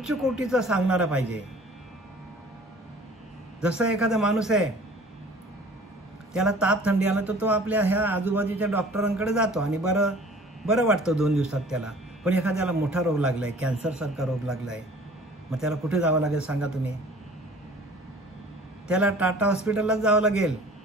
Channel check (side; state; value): both; normal; correlation 0.48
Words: कोटीचं सांगणारा पाहिजे. जसं एखादा माणूस आहे, त्याला ताप थंडी आला तर तो आपल्या ह्या आजूबाजूच्या डॉक्टरांकडे जातो आणि बरं वाटतं 2 दिवसात त्याला. पण एखाद्याला मोठा रोग लागलाय, कॅन्सरसारखा रोग लागलाय, मग त्याला कुठे जावं लागेल सांगा तुम्ही? त्याला टाटा हॉस्पिटललाच जावं लागेल.